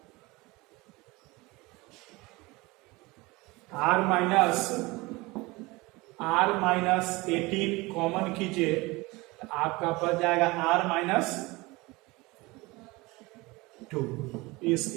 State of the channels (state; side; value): quieter; left; 23.0 dB